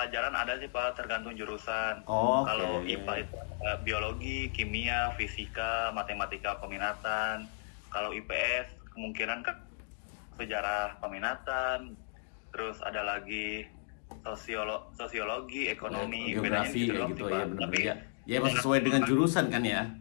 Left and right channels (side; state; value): right; silent; digital silence